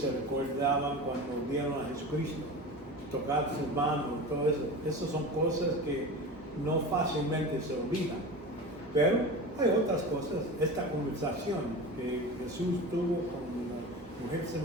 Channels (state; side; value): normal; both; correlation 0.30